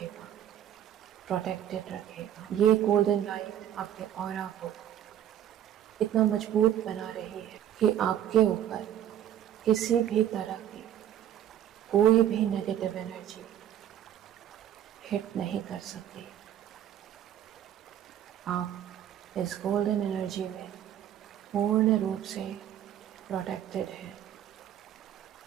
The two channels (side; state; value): left; quieter; 10.8 dB